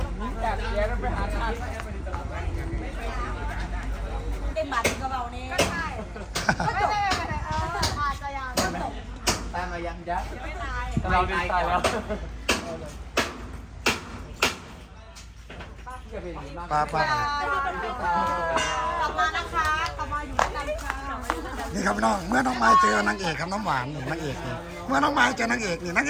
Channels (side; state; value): both; identical; correlation 1.00